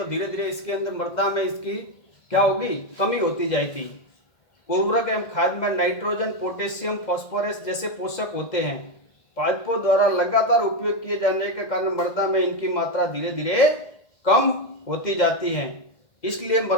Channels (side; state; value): right; late; 2.0 ms